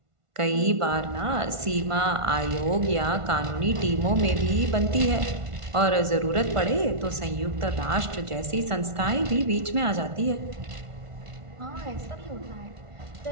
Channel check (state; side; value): late; left; 1.5 ms